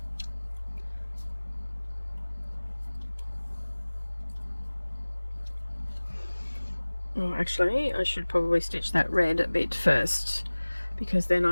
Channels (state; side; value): inverted; both; correlation -1.00